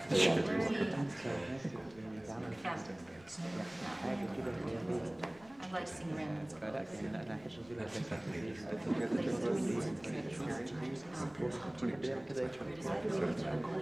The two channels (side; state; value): left; noise; rumble, 25 dB below the sound